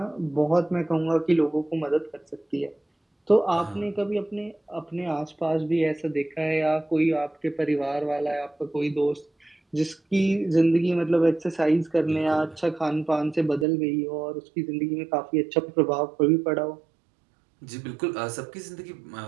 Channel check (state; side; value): drops out; left; at 13.7 s